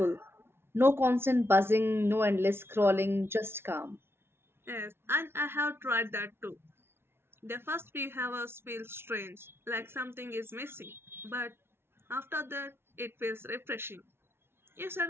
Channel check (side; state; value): left; late; 0.12 ms